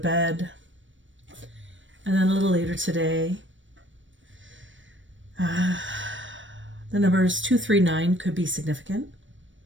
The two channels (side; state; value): left; late; 0.56 ms